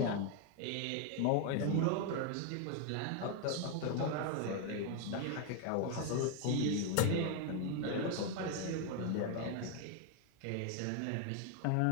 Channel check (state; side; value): different; both; correlation 0.01